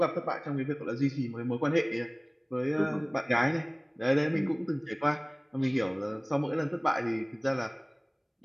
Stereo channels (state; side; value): identical; both; correlation 1.00